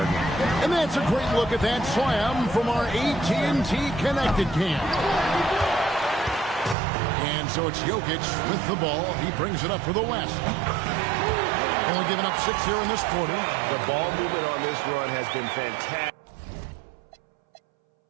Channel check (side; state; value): left; drops out; at 6.8 s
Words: game. And that's a great look at that slam from our AT&T Connected Cam. And so it's Jokic with the ball. He brings it up for the West. Only giving up 6 here in this quarter. The ball movement on this run has been fantastic.